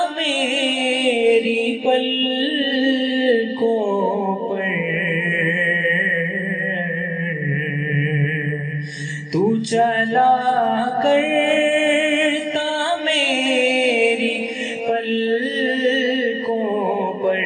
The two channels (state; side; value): identical; both; correlation 1.00